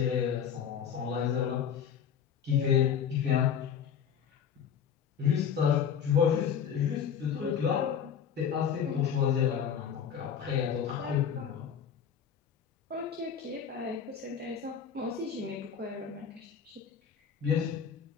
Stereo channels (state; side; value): quieter; right; 7.9 dB